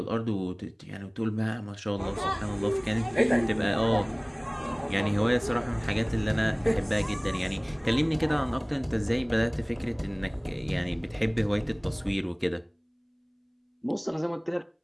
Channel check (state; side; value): identical; both; correlation 1.00